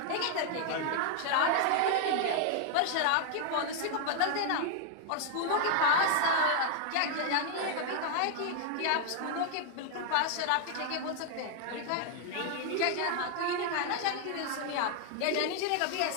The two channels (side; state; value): both; different; correlation 0.00